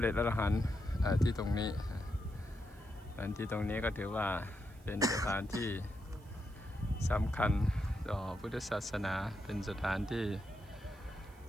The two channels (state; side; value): noise; right; hiss, 28 dB below the sound